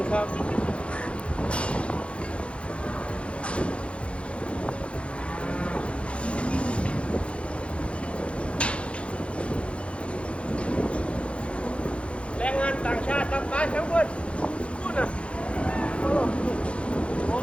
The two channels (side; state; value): right; late; 0.060 ms